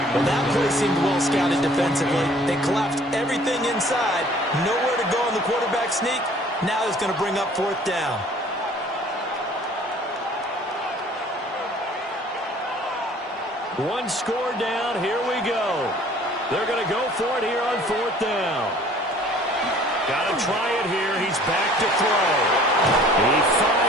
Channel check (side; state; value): both; normal; correlation 0.53